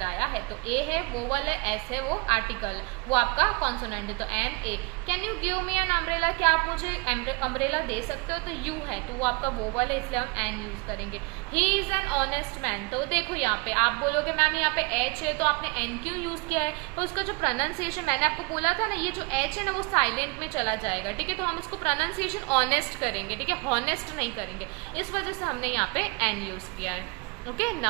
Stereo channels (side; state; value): left; quieter; 29.1 dB